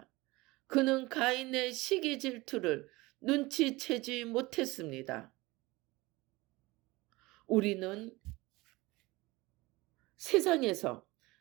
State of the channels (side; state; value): left; quieter; 21.5 dB